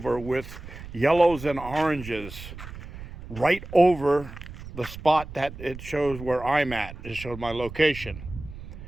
with yellows and oranges right over the spot that it shows where I'm at. It showed my location.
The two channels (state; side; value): noise; right; rumble, 13 dB below the sound